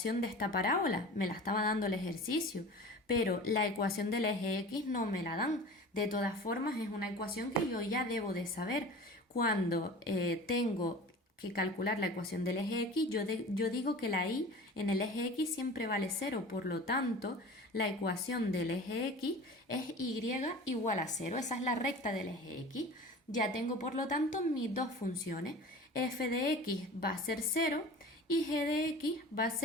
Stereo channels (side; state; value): both; normal; correlation 0.38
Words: de esta parábola, me la estaba dando el ejercicio, pero la ecuación del eje X no me la dan. De todas formas, es una ecuación que yo ya debo de saber. Cuando tengo que calcular la ecuación del eje X, yo digo que la y en el eje X siempre vale 0, por lo tanto, la ecuación del eje X es y igual a 0, esa es la recta del eje X. Ya tengo, por lo tanto, mis dos funciones. F de x va a ser 0 y g de x va a